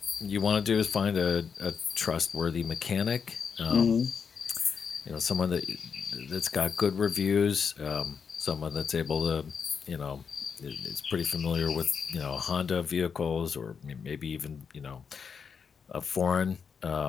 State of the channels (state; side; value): quieter; right; 6.3 dB